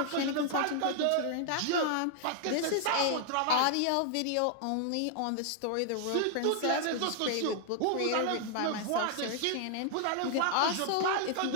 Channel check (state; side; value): different; both; correlation 0.00